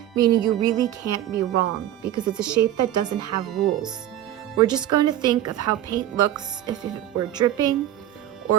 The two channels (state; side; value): quieter; left; 12.4 dB